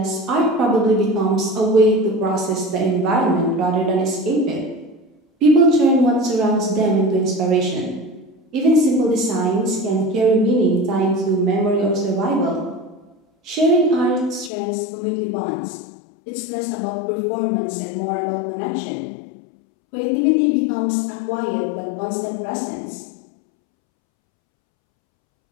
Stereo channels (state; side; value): drops out; right; at 14.5 s